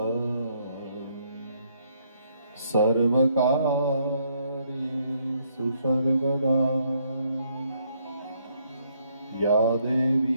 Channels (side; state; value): both; inverted; correlation -0.72